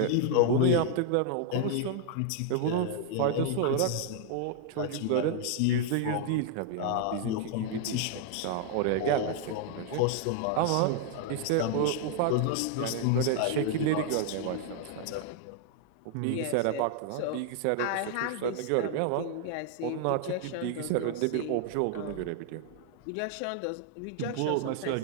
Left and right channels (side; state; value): both; different; correlation 0.00